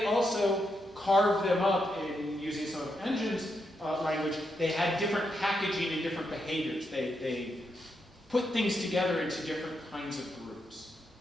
also carved them up in using some of Engine's language. They had different packaging and different behaviors. They put things together into different kinds of groups.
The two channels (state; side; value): normal; both; correlation 0.82